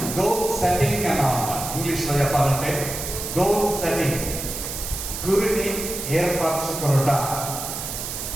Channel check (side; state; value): right; noise; hiss, 6 dB below the sound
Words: గోల్ సెట్టింగ్ అని ఇంగ్లీష్లో చెప్పాలంటే గోల్ సెట్టింగ్, గురిని ఏర్పరచుకునుట.